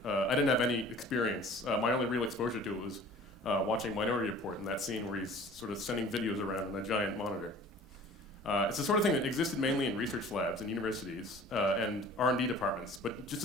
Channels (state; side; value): normal; both; correlation 0.46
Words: I didn't have any experience. My only real exposure to it was watching Minority Report in that scene where he's sort of sending videos around on a giant monitor. It's the sort of thing that existed mainly in research labs and universities and R&D departments, but just